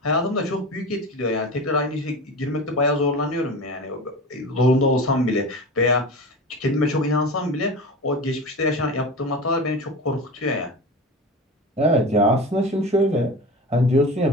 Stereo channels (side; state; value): both; normal; correlation 0.30